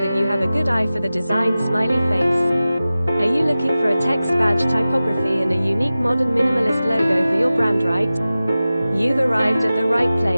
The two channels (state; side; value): inverted; both; correlation -0.96